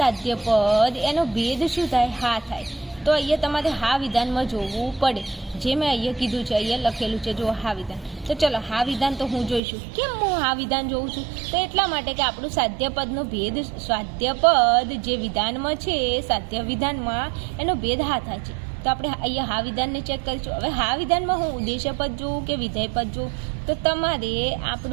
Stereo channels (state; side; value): drops out; left; at 9.6 s